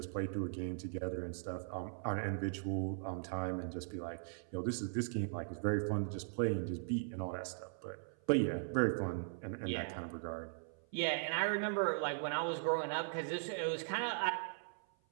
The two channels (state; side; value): silent; left; 52 dB below the other